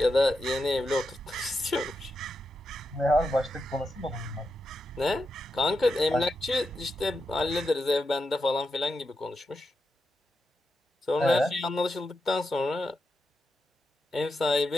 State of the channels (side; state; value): both; normal; correlation 0.87